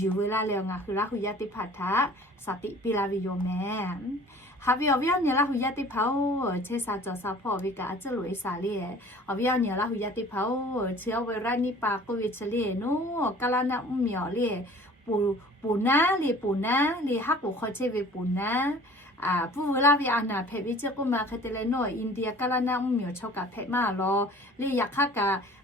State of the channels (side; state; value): both; normal; correlation 0.48